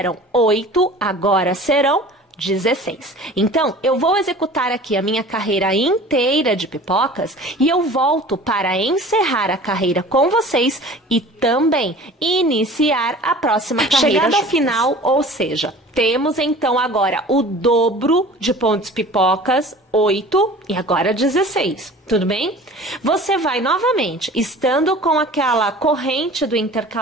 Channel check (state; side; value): normal; both; correlation 0.43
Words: 8, agora serão 16. Então, eu vou executar aqui a minha carreira inteira de pipocas e eu volto para encerrar a carreira com vocês e também iniciar a próxima carreira. Chegando ao final, ou seja, temos então agora o dobro de pontos pipocas, 8 e agora 16. Tudo bem? Você vai novamente, estando com aquela corrente do